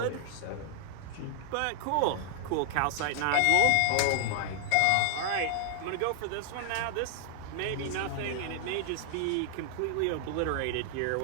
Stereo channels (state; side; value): different; both; correlation 0.00